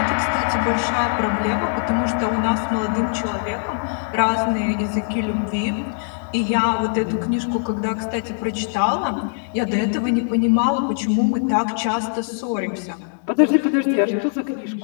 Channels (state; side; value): silent; right; digital silence